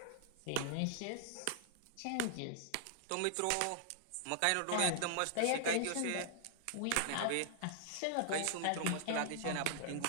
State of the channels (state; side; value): different; both; correlation 0.00